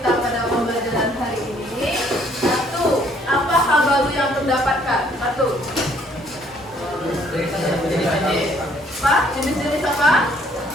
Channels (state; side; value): normal; both; correlation 0.63